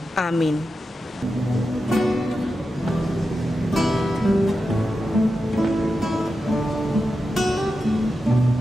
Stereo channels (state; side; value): normal; both; correlation 0.90